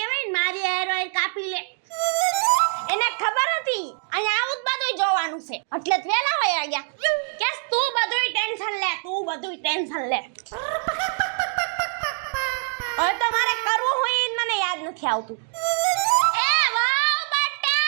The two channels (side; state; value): left; silent; 55 dB below the other